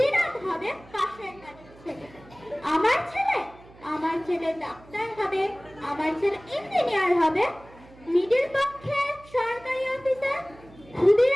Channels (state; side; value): noise; right; hum, 23 dB below the sound